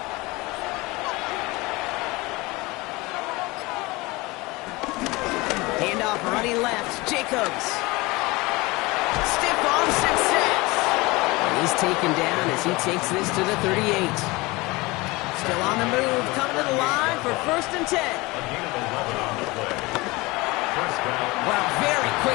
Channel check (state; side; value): quieter; right; 22.9 dB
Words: Handoff running left. Jacobs. Stiff arm success. He's taken down as he takes this to the 38. Still on the move. Coming to the line for 1st and 10. Wow, very